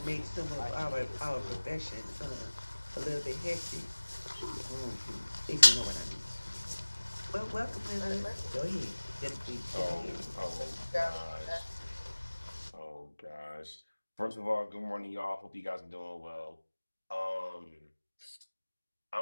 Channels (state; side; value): inverted; both; correlation -1.00